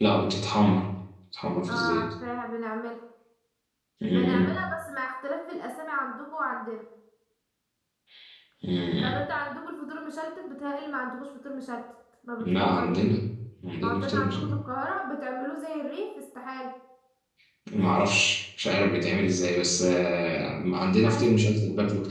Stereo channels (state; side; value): identical; both; correlation 1.00